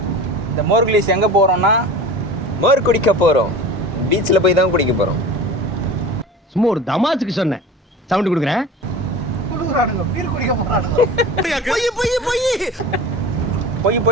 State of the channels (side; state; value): both; normal; correlation 0.35